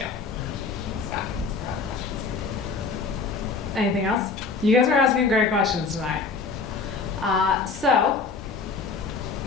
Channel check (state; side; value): quieter; right; 4.6 dB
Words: Anything else? You guys are asking great questions tonight. So,